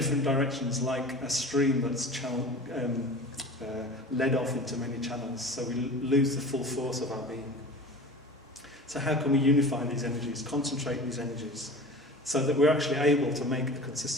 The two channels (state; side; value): normal; both; correlation 0.37